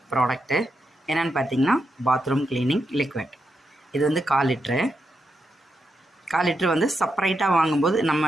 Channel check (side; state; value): both; normal; correlation 0.84